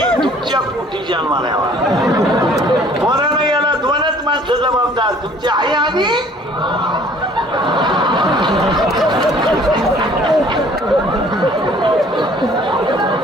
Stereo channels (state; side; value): normal; both; correlation 0.55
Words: तुमच्या पोटी जन्माला यावा. मरण याला 2च माणसं जबाबदार. तुमची आई आणि